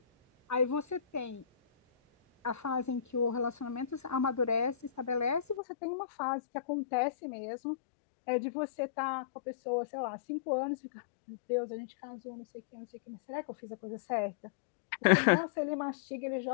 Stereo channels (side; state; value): right; drops out; at 5.6 s